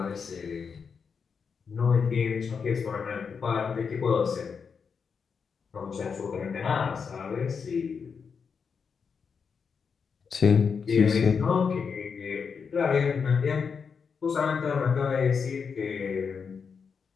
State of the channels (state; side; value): quieter; right; 6.0 dB